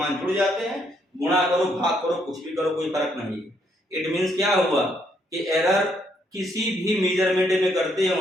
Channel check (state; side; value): normal; both; correlation 0.72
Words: जुड़ जाते हैं। गुणा करो, भाग करो, कुछ भी करो, कोई फर्क नहीं है। इट मींस क्या हुआ कि एरर किसी भी मेजरमेंट में करते